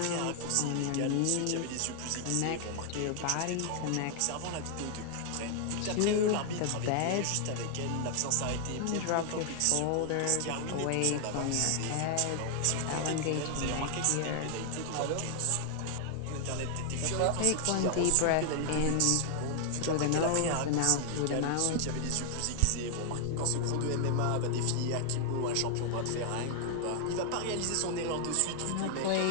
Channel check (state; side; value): different; both; correlation 0.00